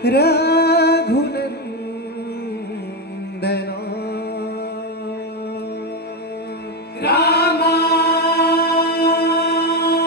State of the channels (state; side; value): normal; both; correlation 0.11